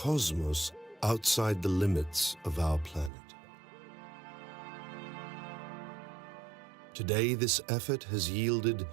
outside the limits of our planet. Today, this effort has yielded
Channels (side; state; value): left; drops out; at 3.1 s